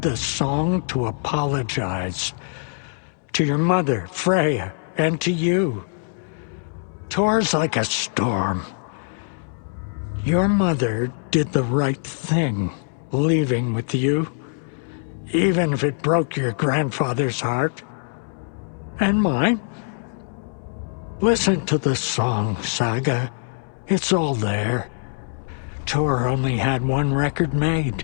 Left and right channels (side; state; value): right; silent; digital silence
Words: song to apologize. To your mother, Freya, and to you. Tor's like a storm. Your mother did the right thing, leaving with you, even if it broke your grandfather's heart. And mine. Listen to the song, Saga. It's all there. Tor only had one record